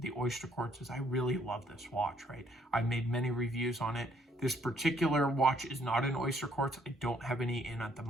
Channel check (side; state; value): both; normal; correlation 0.66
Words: the Oysterquartz is I really love this watch, right? I've made many reviews on it. This particular watch is not an Oysterquartz. I don't have any in at the